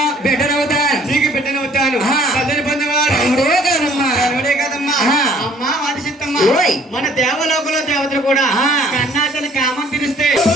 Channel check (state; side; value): normal; both; correlation 0.57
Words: బిడ్డనవుతాను నీకు బిడ్డనవుతాను తల్లిని పొందేవాడు కనుడే కదమ్మా అమ్మా వాడిసిత్తమ్మా మన దేవలోకంలో దేవతలు కూడా కన్నా తన కామం తీరిస్తే